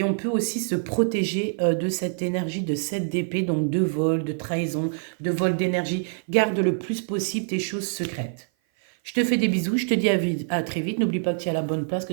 on peut aussi se protéger de cette énergie de 7 d'épée, donc de vol, de trahison, de vol d'énergie. Garde le plus possible tes choses secrètes. Je te fais des bisous, je te dis à très vite. N'oublie pas que tu es à la bonne place,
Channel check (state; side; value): silent; left; 56 dB below the other